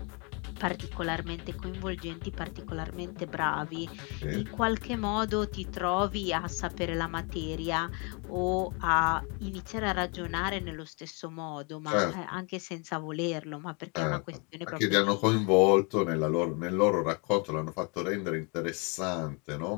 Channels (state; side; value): quieter; right; 32.9 dB